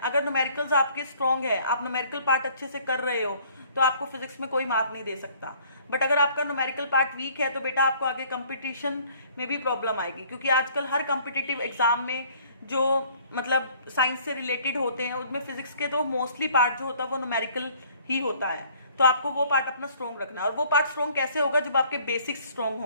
न्यूमेरिकल्स आपके स्ट्रॉन्ग है, आप न्यूमेरिकल पार्ट अच्छे से कर रहे हो, तो आपको फिजिक्स में कोई मार्क नहीं दे सकता। बट अगर आपका न्यूमेरिकल पार्ट वीक है तो बेटा आपको आगे कंपटीशन में भी प्रॉब्लम आएगी, क्योंकि आजकल हर कॉम्पिटिटिव एग्जाम में जो मतलब साइंस से रिलेटेड होते हैं उसमें फिजिक्स के तो मोस्टली पार्ट जो होता है वो न्यूमेरिकल ही होता है। तो आपको वो पार्ट अपना स्ट्रॉन्ग रखना है, और वो पार्ट स्ट्रॉन्ग कैसे होगा, जब आपके बेसिक्स स्ट्रॉन्ग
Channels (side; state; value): both; inverted; correlation -0.57